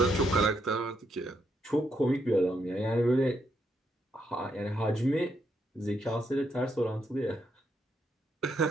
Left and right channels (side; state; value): both; normal; correlation 0.78